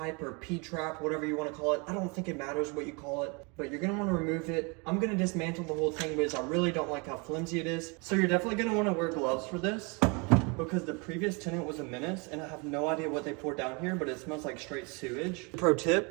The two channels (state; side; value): quieter; left; 30.9 dB